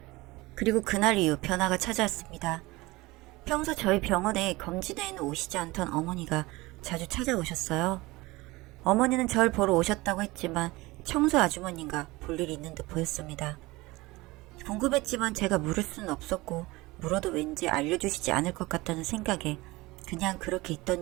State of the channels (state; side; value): quieter; left; 21.2 dB